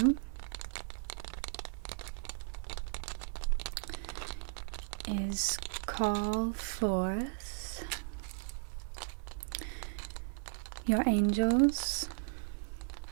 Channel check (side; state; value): left; silent; 54 dB below the other